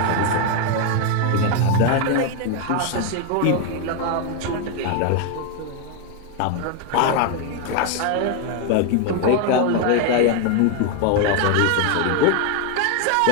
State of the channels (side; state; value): both; different; correlation 0.01